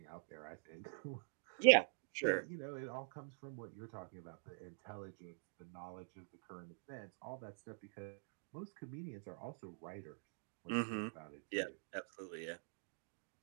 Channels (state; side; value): silent; left; digital silence